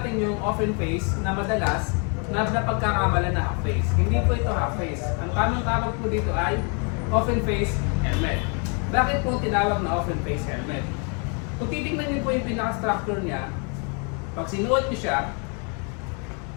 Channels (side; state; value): right; quieter; 37.3 dB